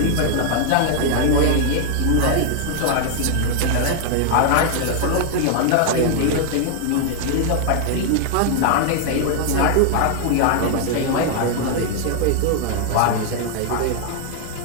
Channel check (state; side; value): different; both; correlation 0.00